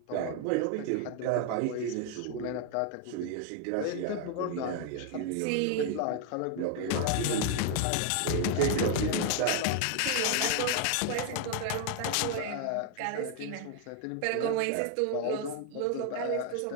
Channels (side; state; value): both; different; correlation 0.00